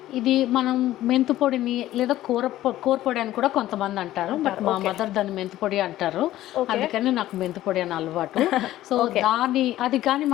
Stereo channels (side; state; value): right; quieter; 14.5 dB